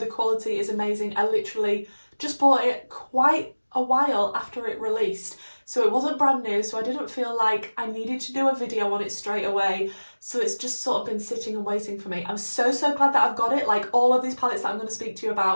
quality is amazing. I literally just bought it quite a while after it released, so it wasn't brand new, so I didn't feel like I needed to do a video on it straight away, so it's just sort of been sitting and waiting for me. I'm so glad that I've got it. Like, all of these palettes that I'm going to speak to you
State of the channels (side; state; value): both; inverted; correlation -1.00